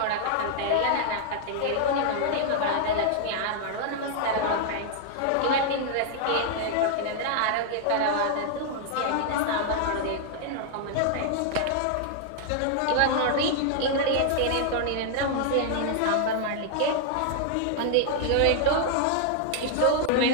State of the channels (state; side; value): different; both; correlation -0.01